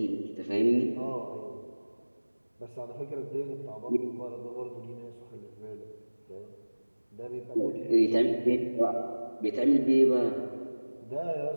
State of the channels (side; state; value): both; inverted; correlation -1.00